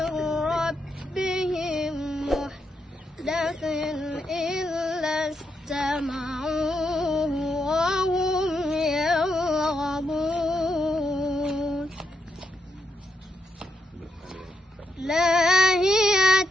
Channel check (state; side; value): normal; both; correlation 0.81